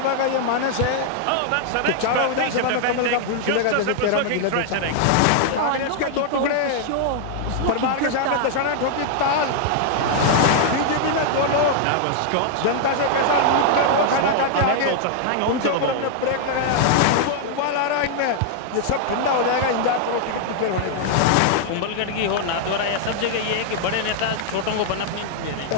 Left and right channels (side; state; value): both; different; correlation 0.00